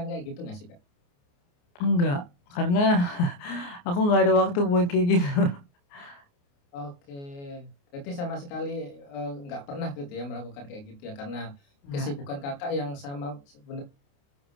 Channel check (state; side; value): late; right; 28 ms